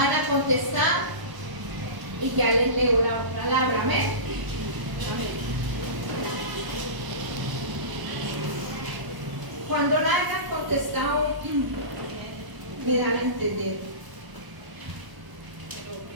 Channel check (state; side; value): late; left; 1.0 ms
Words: a contestar y ya les leo la palabra. Amén. Amén. Cuando la hayan contestado, me dan a entender.